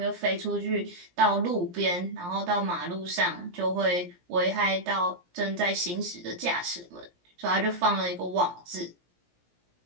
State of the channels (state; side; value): late; left; 17 ms